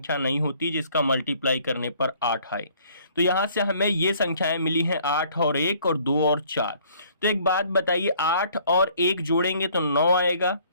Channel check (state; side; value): inverted; both; correlation -0.59